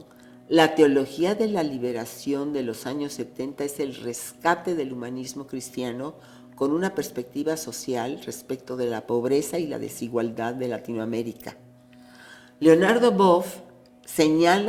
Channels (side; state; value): both; identical; correlation 1.00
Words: la teología de la liberación de los años 70 es el rescate del humanismo cristiano con una perspectiva social respecto de la pobreza y la desigualdad de Latinoamérica. Leonardo Boff